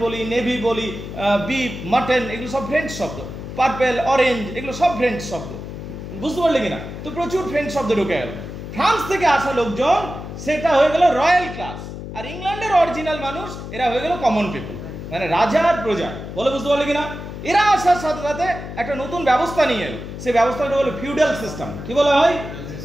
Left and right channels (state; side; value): noise; left; hum, 9 dB below the sound